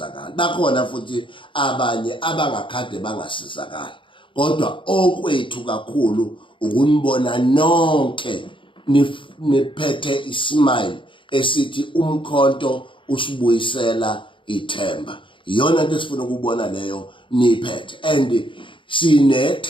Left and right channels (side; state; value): right; late; 0.24 ms